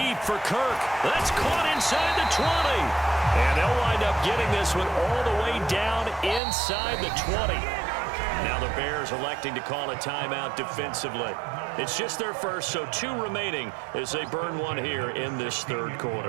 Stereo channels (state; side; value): drops out; left; at 6.4 s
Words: for Kirk. That's caught inside the 20. And they'll wind up getting this one all the way down inside the 20. Now the Bears electing to call a timeout defensively. It's just their first, so 2 remaining as they burn one here in this third